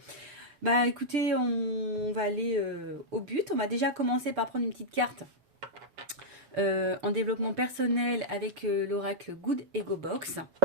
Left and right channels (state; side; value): late; left; 6.8 ms